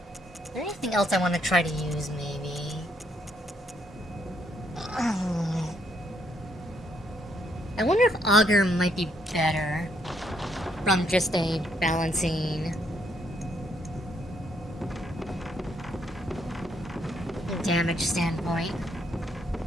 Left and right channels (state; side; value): normal; both; correlation 0.73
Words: Is there anything else I want to try to use, maybe? I wonder if Augur might be better from just a balancing damage standpoint.